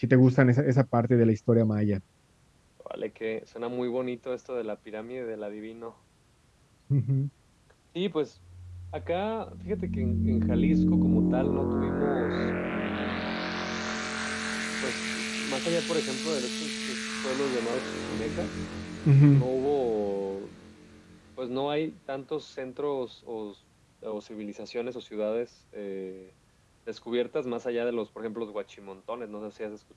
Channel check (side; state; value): both; identical; correlation 1.00